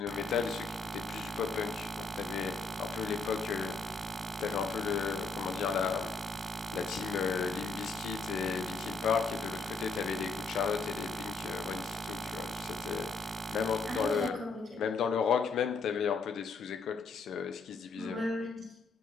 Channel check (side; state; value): right; quieter; 4.2 dB